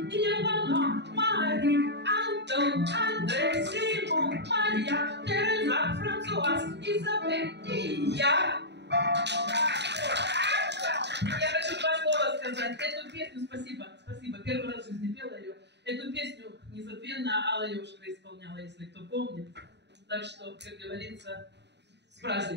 Евана, Мари. Антон, Андрей, Симон, Мария, Тереза, Франсуаз, Изабель и я. Я хочу 2 слова сказать. Эту песню, спасибо, первый раз в жизни пела ее. Эту песню незабвенно Алла Ёшкина исполняла, если кто помнит. Так что, как говорится, с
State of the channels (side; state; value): left; late; 0.50 ms